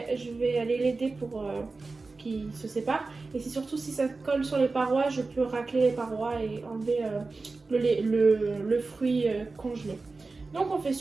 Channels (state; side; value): quieter; left; 3.8 dB